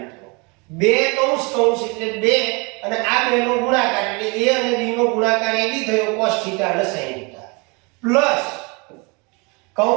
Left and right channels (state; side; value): quieter; left; 29.8 dB